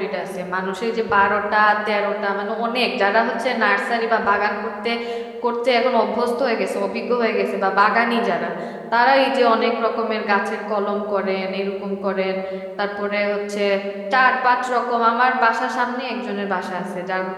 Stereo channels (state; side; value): identical; both; correlation 1.00